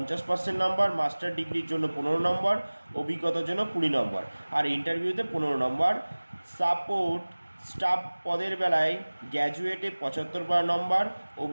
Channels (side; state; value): both; inverted; correlation -1.00